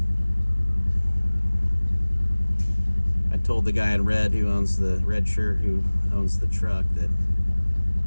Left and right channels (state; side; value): inverted; both; correlation -1.00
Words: I told the guy in red who owns the red shirt who owns the truck that